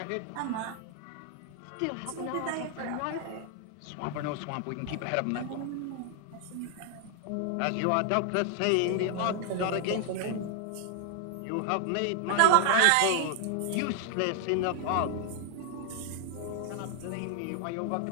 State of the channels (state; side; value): different; both; correlation 0.00